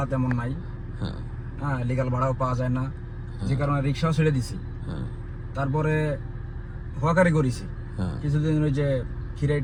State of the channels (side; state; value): both; identical; correlation 1.00